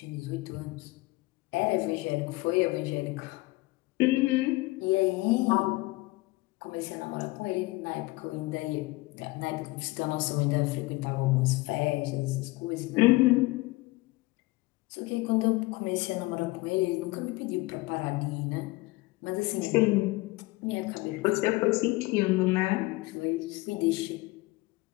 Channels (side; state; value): right; quieter; 21.8 dB